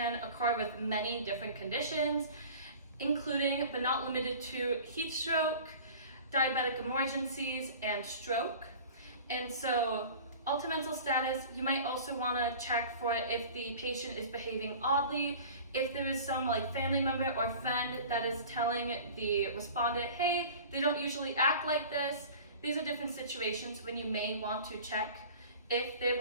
occur with many different conditions, including but not limited to heat stroke, diabetic emergencies, and stroke. And so altered mental status, you might also want to check for if the patient is behaving oddly, if there is some family member or friend that is telling the respondent, hey, they don't usually act like this. These are different situations when you may want to check if they have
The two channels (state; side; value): inverted; both; correlation -0.41